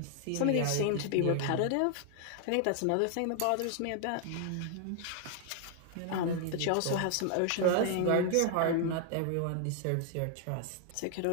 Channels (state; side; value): different; both; correlation 0.00